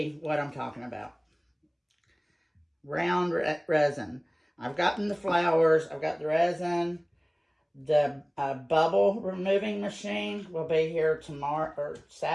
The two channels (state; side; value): identical; both; correlation 1.00